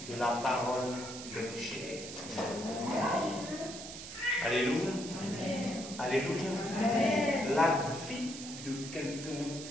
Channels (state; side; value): noise; right; hiss, 10 dB below the sound